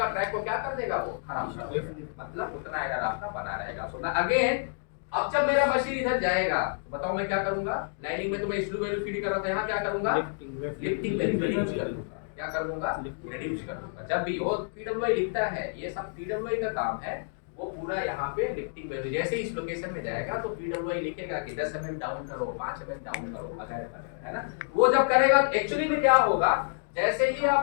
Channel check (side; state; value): right; silent; digital silence